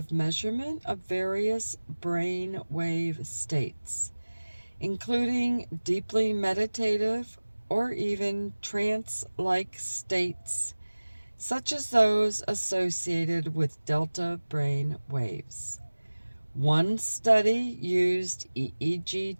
measurement of various brain wave states, including deeply meditative or even trance-like states, such as those associated with delta brain waves. One study used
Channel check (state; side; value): inverted; both; correlation -1.00